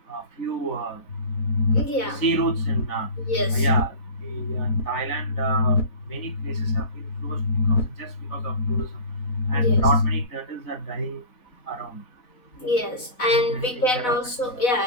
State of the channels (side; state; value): right; late; 4.0 ms